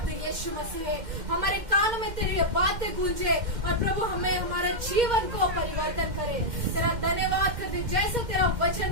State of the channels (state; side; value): late; left; 2.1 ms